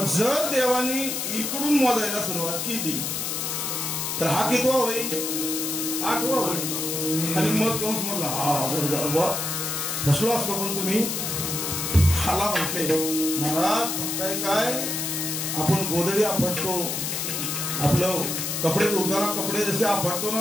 जर देवानी इकडून मोजायला सुरुवात केली तर हा कितवा होईल? 8वा होईल. आणि मग कंस म्हणला हा फसलो असतो पण तुम्ही हाला म्हटले महाराज बघताय काय आपण गोदडी आपटतो आपलं कपडे धुताना कपडे जसे आपटतो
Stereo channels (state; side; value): noise; left; hiss, 2 dB below the sound